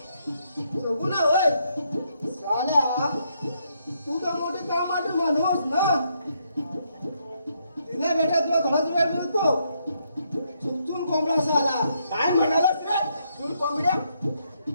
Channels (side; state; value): both; inverted; correlation -0.75